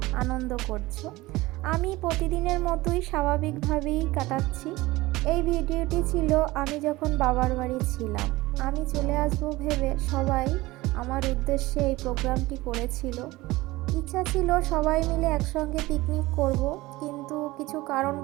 আনন্দ করছো। আমি প্রতিদিনের মতোই স্বাভাবিকভাবেই কাটাচ্ছি। এই ভিডিওটি ছিল আমি যখন বাবার বাড়ি ছিলাম। আমি চলে আসবো ভেবে সবাই আমার উদ্দেশ্যে এই প্রোগ্রামটি করেছিল। ইচ্ছা ছিল সবাই মিলে একসঙ্গে পিকনিক করব, কিন্তু কিছু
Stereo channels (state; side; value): quieter; left; 19.6 dB